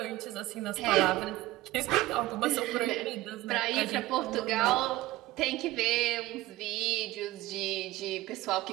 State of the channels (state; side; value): quieter; left; 17.3 dB